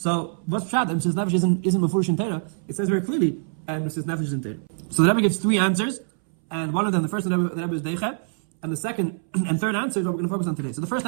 what's pshat? Mesirus Nefesh isn't mefurish in Torah. It says very clearly, and Mesirus Nefesh is in Torah. So the Rebbe gives three answers, and one of them, the first one, the Rebbe is Deicha, and the second and third answer is what we're going to focus on today. So the first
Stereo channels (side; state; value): left; silent; 62 dB below the other